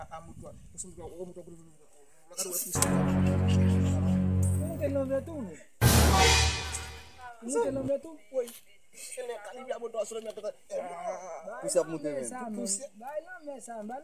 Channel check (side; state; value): both; identical; correlation 1.00